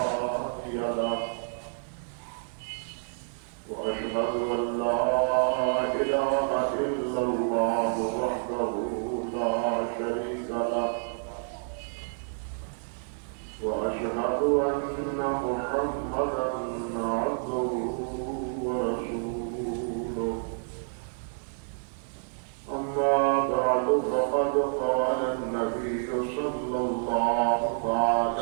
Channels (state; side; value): silent; left; 59 dB below the other